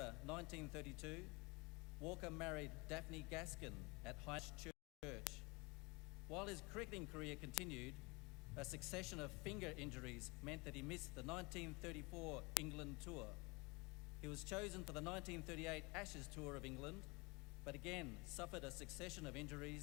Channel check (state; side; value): quieter; right; 27.1 dB